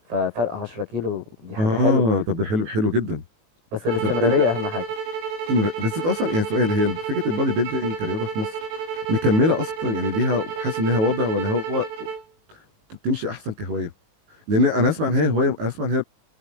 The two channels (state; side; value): late; left; 19 ms